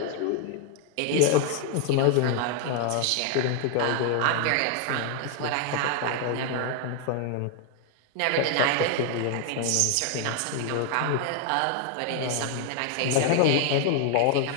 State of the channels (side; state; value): both; different; correlation 0.00